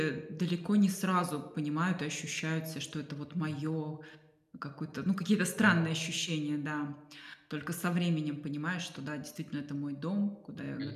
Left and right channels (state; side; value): identical; both; correlation 1.00